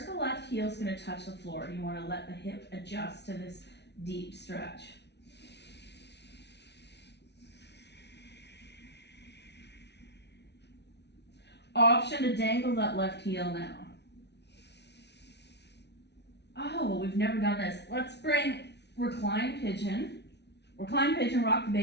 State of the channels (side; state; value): right; late; 0.50 ms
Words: the left heel is going to touch the floor. You want to let the hip adjust to this deep stretch. Option to dangle that left heel now. Oh, well, we've never done this. Let's bring recline pigeon, rock the